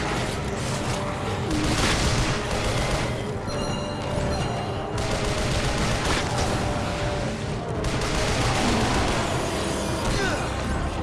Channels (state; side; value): identical; both; correlation 1.00